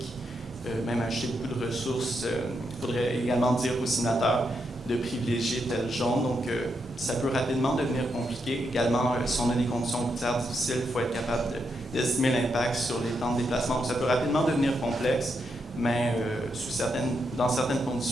même acheter beaucoup de ressources, il faudrait également dire aux signataires de privilégier tel jaune. Donc, ça peut rapidement devenir compliqué. Également, si on a des conditions routières difficiles, il faut être capable d'estimer l'impact sur les temps de déplacement. Donc, ça peut rapidement devenir complexe, mais dans certaines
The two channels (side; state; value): both; normal; correlation 0.82